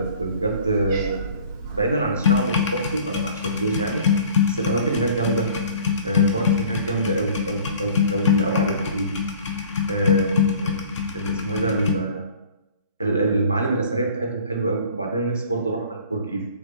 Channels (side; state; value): both; inverted; correlation -0.48